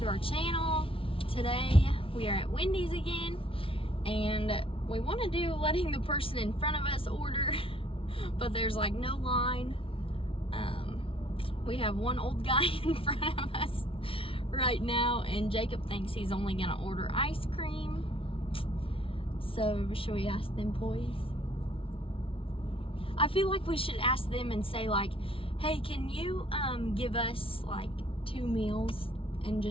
our channel. Today we are at Wendy's again, and we want to do letting the person in front of us order, but there's like no line. We have one old guy in front of us right now, and Jacob thinks he's only gonna order ice cream. So should we ask them, please? I feel like we should ask them and say like, hey, can you give us like 2 meals and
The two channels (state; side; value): late; right; 0.26 ms